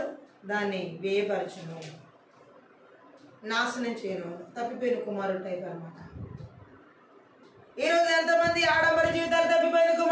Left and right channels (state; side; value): identical; both; correlation 1.00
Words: దాన్ని వ్యయపరచును, నాశనం చేయను, తప్పిపోయిన కుమారుడు టైప్ అనమాట. ఈరోజు ఎంతమంది ఆడంబర జీవితాలు తప్పిపోయిన